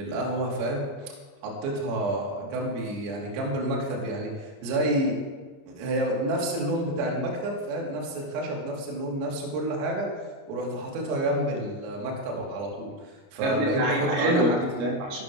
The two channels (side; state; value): left; late; 29 ms